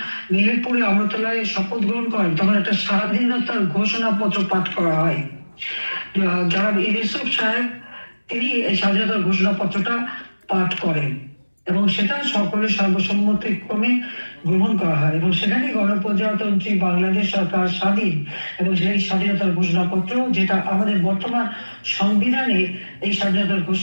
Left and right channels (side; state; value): both; inverted; correlation -1.00